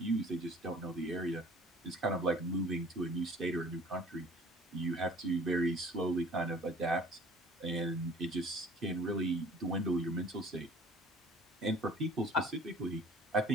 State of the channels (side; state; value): both; normal; correlation 0.49